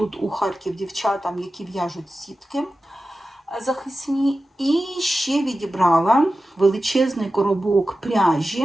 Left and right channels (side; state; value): both; normal; correlation 0.94